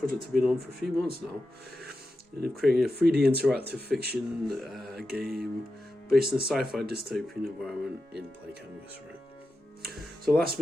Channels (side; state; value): both; normal; correlation 0.90